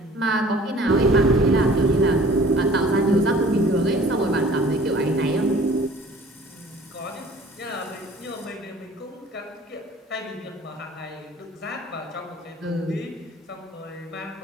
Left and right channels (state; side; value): normal; both; correlation 0.50